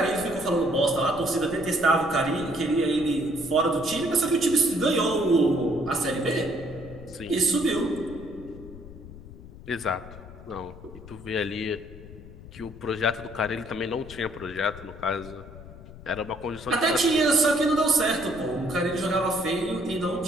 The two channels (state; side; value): noise; left; rumble, 16 dB below the sound